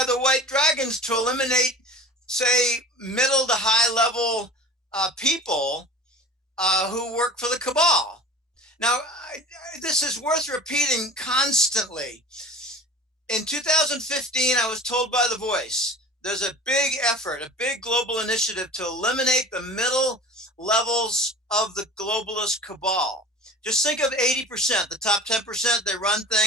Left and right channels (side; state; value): both; normal; correlation 0.39